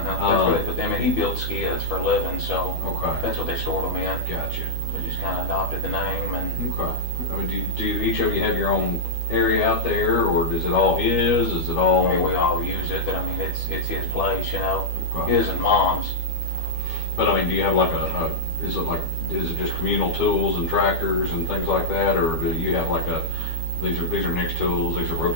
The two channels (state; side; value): late; right; 12 ms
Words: where they put them in. He built skids for a living, so Okay. that's what they stored them in. Gotcha. We just kind of adopted the name and. Okay. I mean, do each of you have your own area out there, or is it all his? Is it all? I mean, we all use it, but I mean, it's his place, you know, Okay. his and mom's. But I mean, do you have like is it just communal tools and tractors and things like that, or do you have like these are Nick's tools, these are